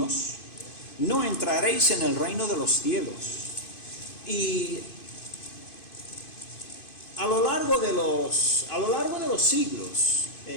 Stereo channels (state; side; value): late; right; 2.5 ms